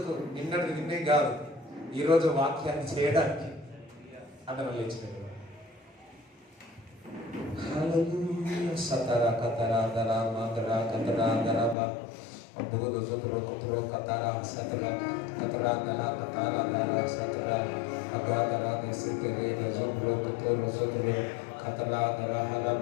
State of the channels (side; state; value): right; drops out; at 11.8 s